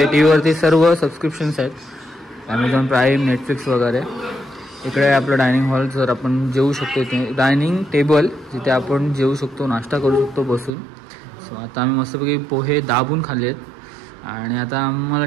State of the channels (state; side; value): drops out; left; at 10.7 s